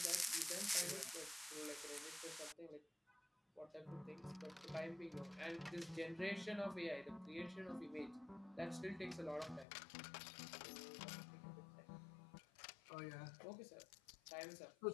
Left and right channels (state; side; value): drops out; right; at 9.7 s